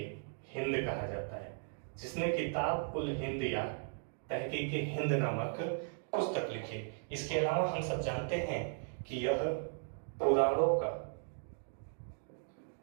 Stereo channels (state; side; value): silent; left; digital silence